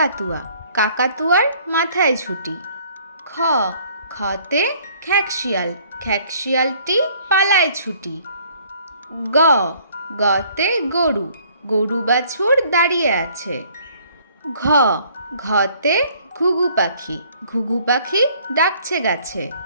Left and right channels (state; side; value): inverted; both; correlation -0.59